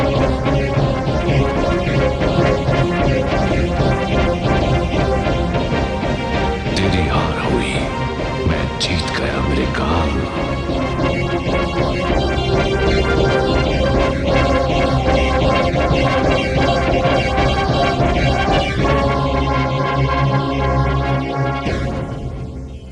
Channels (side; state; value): both; identical; correlation 1.00